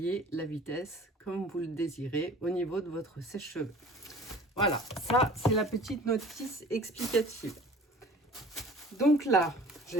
la vitesse comme vous le désirez au niveau de votre sèche-cheveux. Voilà, ça c'est la petite notice explicative. Donc là,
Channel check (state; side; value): normal; both; correlation 0.46